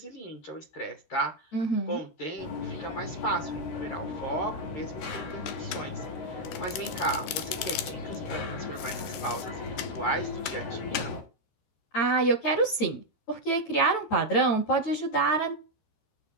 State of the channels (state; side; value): late; right; 13 ms